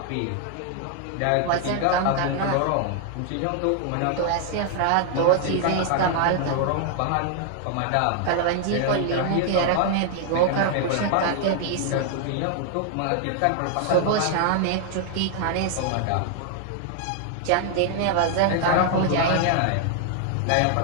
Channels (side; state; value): both; different; correlation 0.00